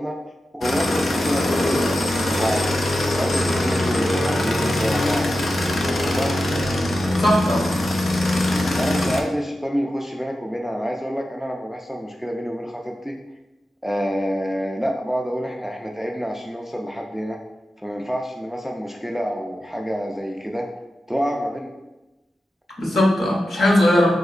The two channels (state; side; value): normal; both; correlation 0.92